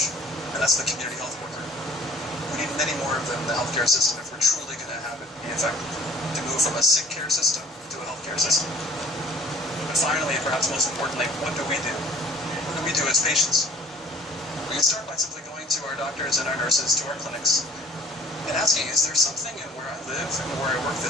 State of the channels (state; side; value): normal; both; correlation 0.48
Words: and that's the community health worker. We need many more of them in the healthcare system if we're truly going to have it be effective, to move from a sick care system to a healthcare system. But finally, and perhaps most importantly, what do we do? What do we do as patients? We can start by simply going to our doctors and our nurses, to our clinics, and asking, is there something in where I live and where I work